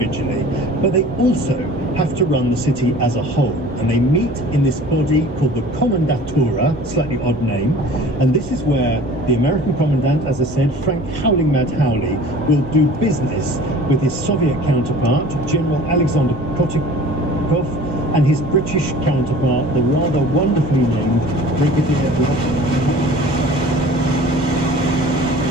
but they also have to run the city as a whole. And they meet in this body called the Kommandatura, slightly odd name. And this is where the American commandant, as I said, Frank Howling Mad Howley, will do business with his Soviet counterpart, General Alexander Kotikov, and his British counterpart, the rather wonderfully named Brigadier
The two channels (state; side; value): normal; both; correlation 0.45